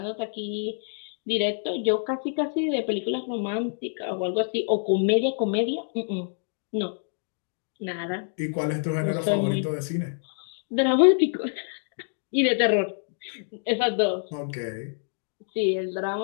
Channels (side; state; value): right; silent; digital silence